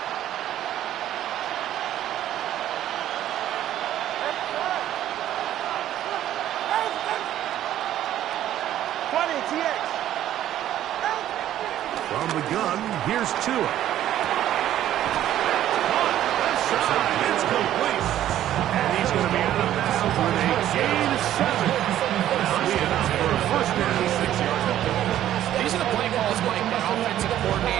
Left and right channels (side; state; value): left; quieter; 12.2 dB